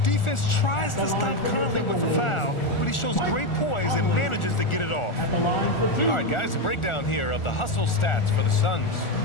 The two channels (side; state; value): right; late; 1.4 ms